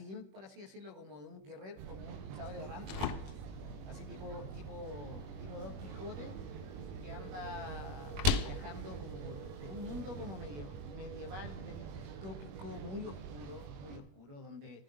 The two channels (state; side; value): late; left; 21 ms